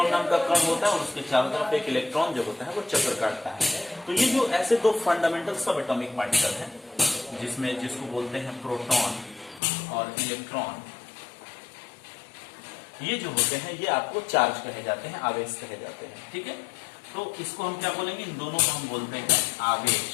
नाम का कण होता है, और उसके चारों तरफ एक इलेक्ट्रॉन जो होता है वो चक्कर काटता है। तो ये जो ऐसे दो फंडामेंटल सब एटॉमिक पार्टिकल हैं, जिसको बोलते हैं प्रोटॉन और इलेक्ट्रॉन, ये जो होते हैं ये आपको चार्ज कहे जाते हैं, आवेश कहे जाते हैं। ठीक है, तो इसको हम क्या बोलेंगे, इन दोनों को हम बोलते हैं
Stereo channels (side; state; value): right; drops out; at 9.6 s